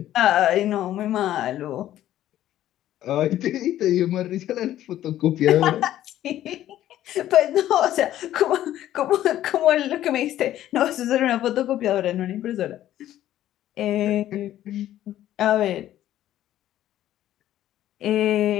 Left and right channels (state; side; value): quieter; right; 12.8 dB